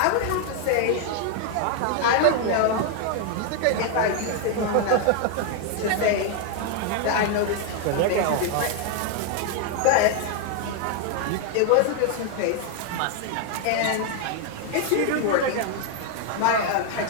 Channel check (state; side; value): different; both; correlation 0.01